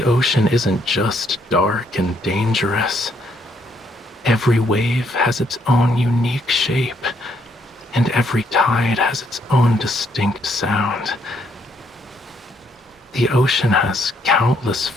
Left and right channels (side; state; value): both; normal; correlation 0.71